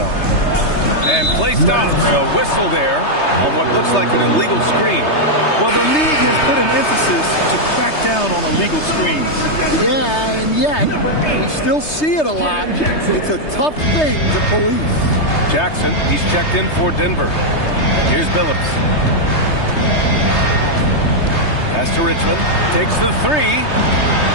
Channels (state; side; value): late; right; 3.3 ms